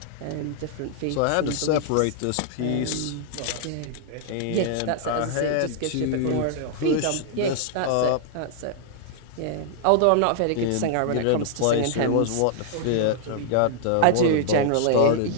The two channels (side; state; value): both; different; correlation -0.01